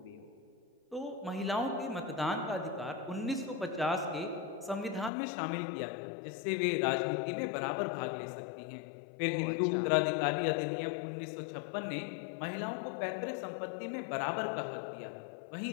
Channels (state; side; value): drops out; right; at 5.1 s